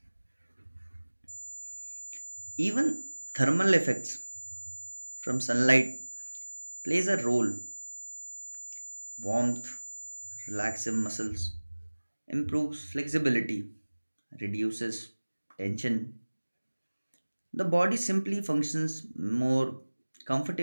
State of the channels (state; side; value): inverted; both; correlation -1.00